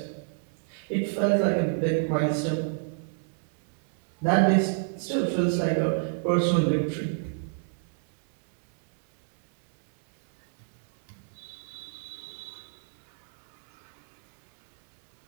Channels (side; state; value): left; silent; 59 dB below the other